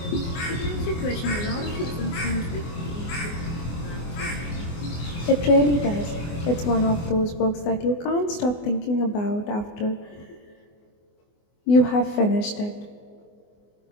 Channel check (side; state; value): right; late; 24 ms